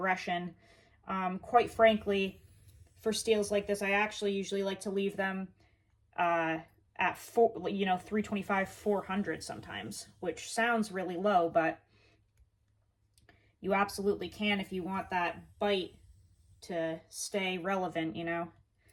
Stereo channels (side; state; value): both; identical; correlation 1.00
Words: Quite frankly, for steels like this, I actually usually like to leave them at 325, 400 sometimes, which sounds really low, but you absolutely can if you want that bite to stay relevant, you know,